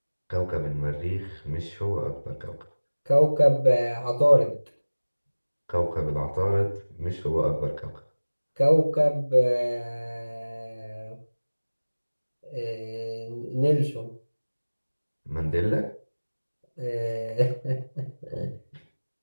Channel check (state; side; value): inverted; both; correlation -1.00